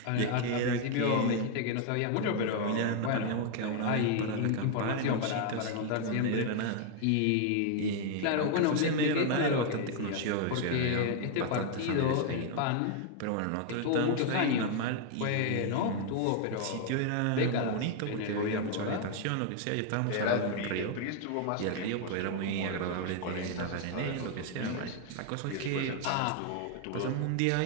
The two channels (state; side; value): different; both; correlation 0.00